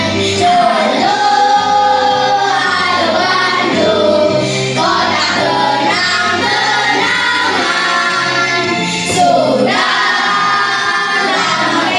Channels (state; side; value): identical; both; correlation 1.00